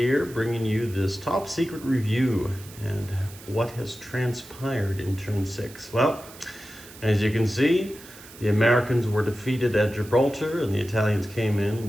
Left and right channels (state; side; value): noise; right; hiss, 19 dB below the sound